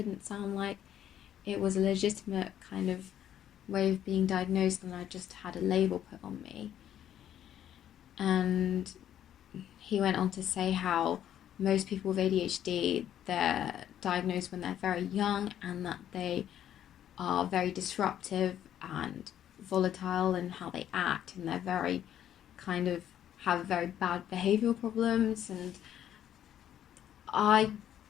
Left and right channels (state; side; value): quieter; right; 10.7 dB